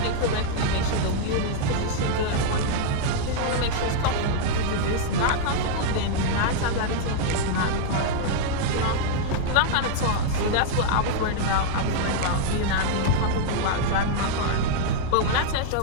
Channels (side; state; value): both; different; correlation -0.01